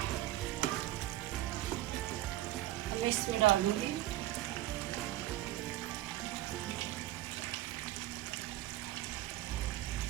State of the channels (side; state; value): left; quieter; 15.6 dB